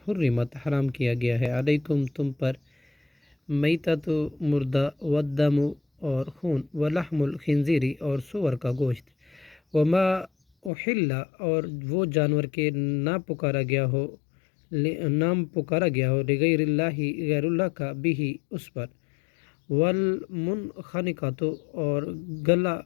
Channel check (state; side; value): drops out; right; at 10.7 s